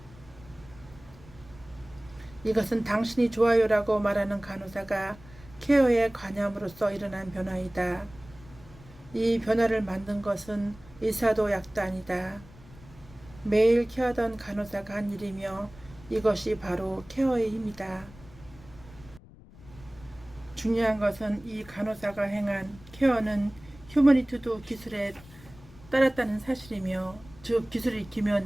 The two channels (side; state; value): left; noise; rumble, 21 dB below the sound